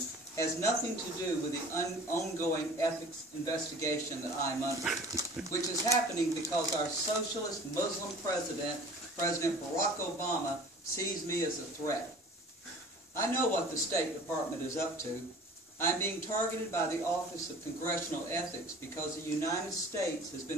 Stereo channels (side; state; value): both; normal; correlation 0.44